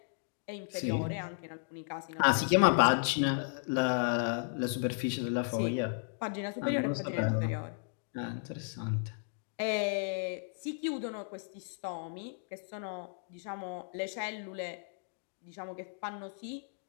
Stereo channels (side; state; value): right; silent; digital silence